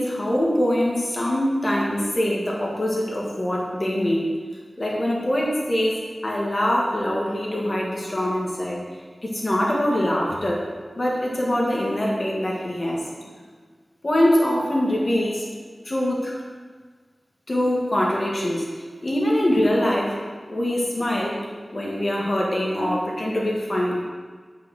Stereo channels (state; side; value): normal; both; correlation 0.96